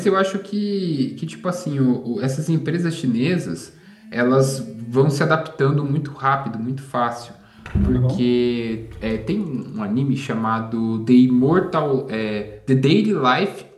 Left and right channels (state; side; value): identical; both; correlation 1.00